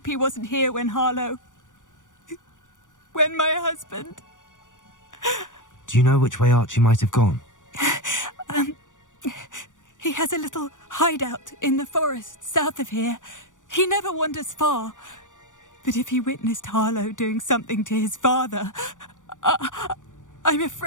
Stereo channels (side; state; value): right; late; 0.87 ms